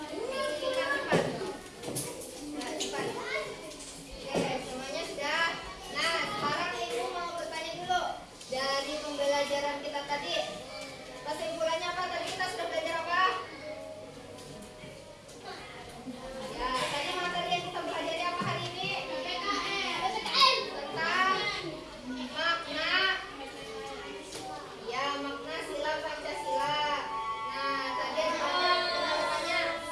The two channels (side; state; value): both; identical; correlation 1.00